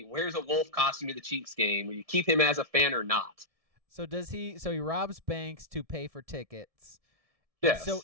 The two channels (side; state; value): left; late; 1.7 ms